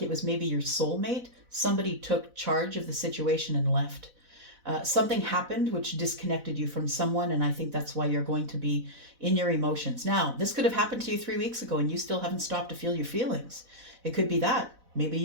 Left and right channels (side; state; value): left; late; 4.0 ms